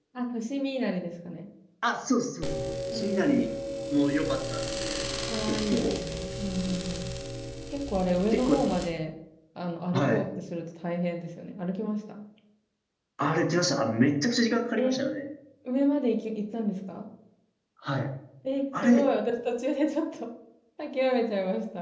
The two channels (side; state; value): both; identical; correlation 1.00